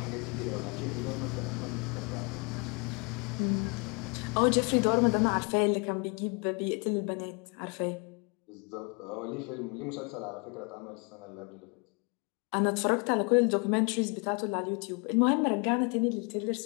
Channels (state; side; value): quieter; right; 33.2 dB